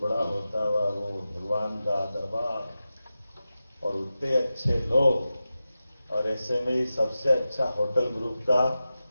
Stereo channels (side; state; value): both; inverted; correlation -0.93